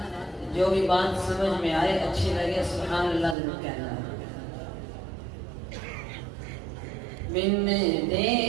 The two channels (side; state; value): left; drops out; at 3.4 s